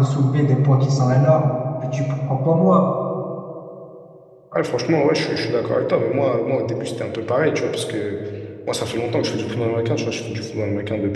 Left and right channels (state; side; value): identical; both; correlation 1.00